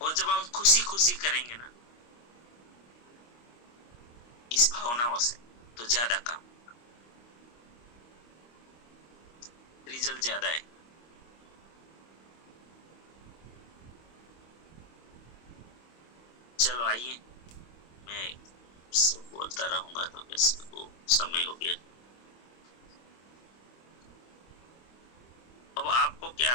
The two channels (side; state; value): right; late; 25 ms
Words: और जब हम खुशी खुशी करेंगे ना इस भावनाओं से, तो ज्यादा काम, रिजल्ट ज्यादा है। चलो आइए, मैं बोलता रहूंगा तो किसी को समय हो गया। अब आपको क्या